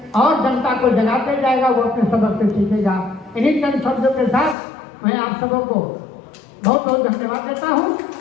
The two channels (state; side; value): drops out; right; at 4.5 s